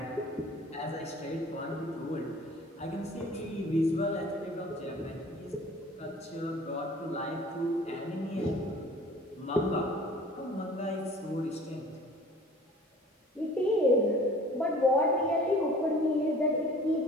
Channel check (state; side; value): normal; both; correlation 0.48